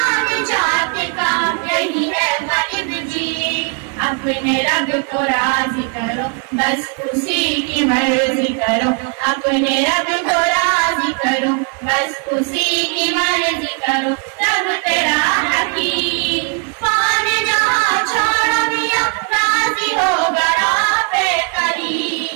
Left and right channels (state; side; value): quieter; left; 37.3 dB